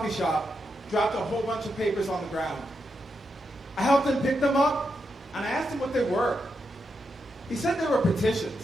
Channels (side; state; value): both; normal; correlation 0.84